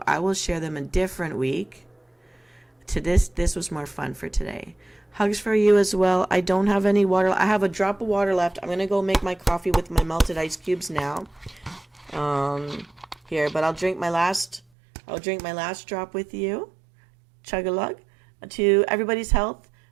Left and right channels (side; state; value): left; drops out; at 14.6 s